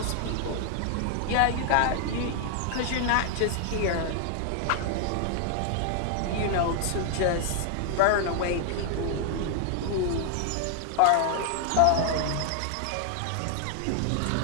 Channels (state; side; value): different; both; correlation 0.00